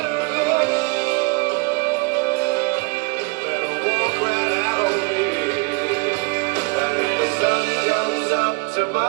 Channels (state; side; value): quieter; left; 30.1 dB